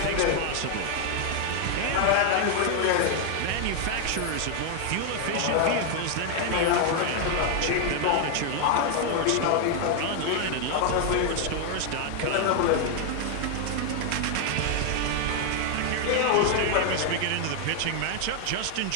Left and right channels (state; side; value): different; both; correlation 0.00